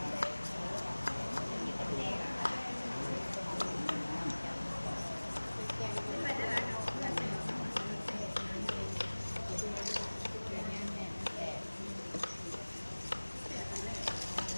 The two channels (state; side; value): inverted; both; correlation -1.00